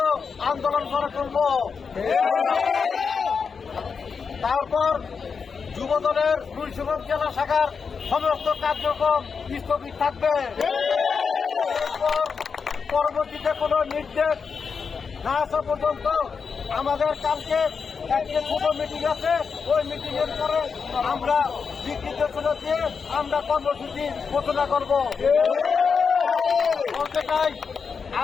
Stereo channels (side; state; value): right; quieter; 5.6 dB